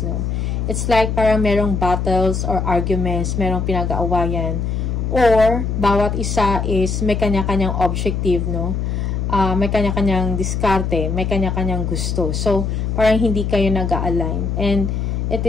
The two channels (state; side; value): noise; left; hum, 1 dB below the sound